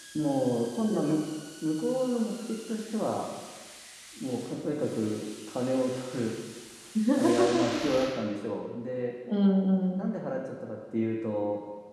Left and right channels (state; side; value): identical; both; correlation 1.00